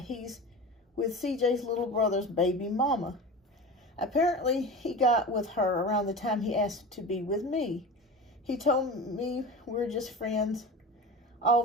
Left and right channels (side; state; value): both; normal; correlation 0.30